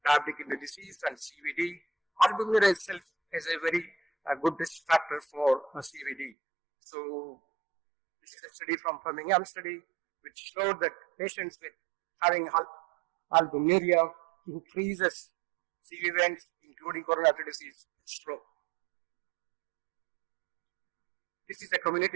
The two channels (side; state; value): left; drops out; at 6.3 s